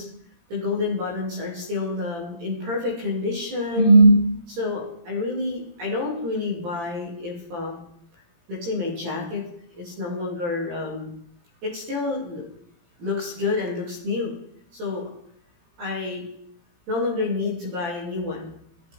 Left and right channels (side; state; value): left; late; 18 ms